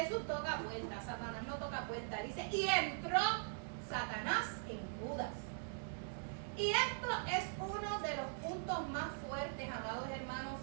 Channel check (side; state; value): left; silent; digital silence